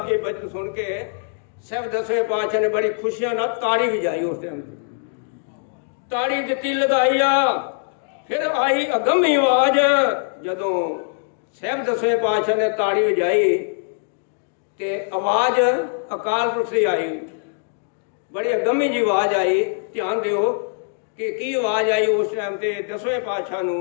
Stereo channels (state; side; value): silent; right; digital silence